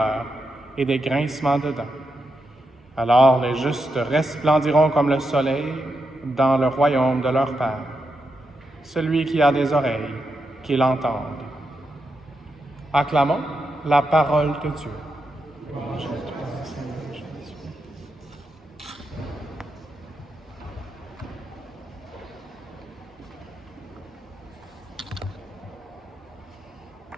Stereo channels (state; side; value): normal; both; correlation 0.85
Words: et des grincements de dents. Alors les justes resplendiront comme le soleil dans le royaume de leur Père. Celui qui a des oreilles, qu'il entende. Acclamons la parole de Dieu.